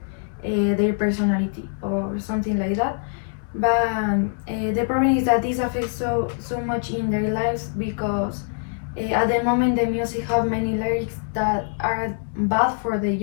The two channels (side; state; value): right; silent; digital silence